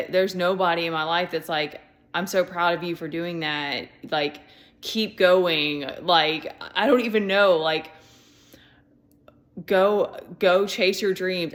nobody in my life that's like, I'm so proud of you for doing that, like, keep going. Like, I don't even know, like, go chase your dreams.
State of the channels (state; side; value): identical; both; correlation 1.00